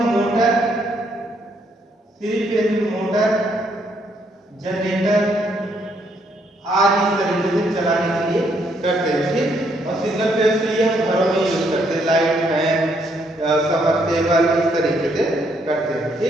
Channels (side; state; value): both; normal; correlation 0.72